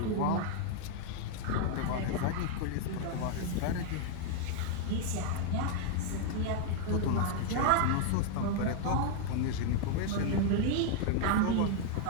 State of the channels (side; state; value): both; different; correlation 0.00